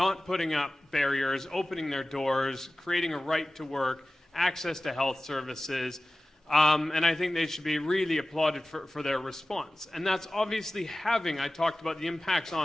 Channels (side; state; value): both; normal; correlation 0.97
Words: putting up barriers, opening their doors, creating a right to work, access to health services, and I think they should be really applauded for their response. And that's obviously having, I talked about the impacts